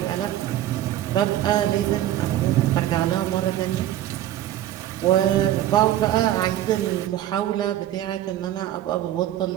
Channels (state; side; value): quieter; left; 12.8 dB